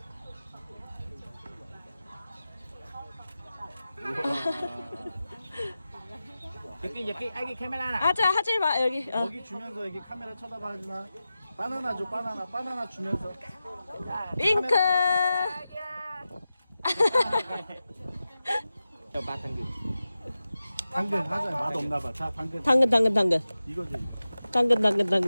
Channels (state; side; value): inverted; both; correlation -0.94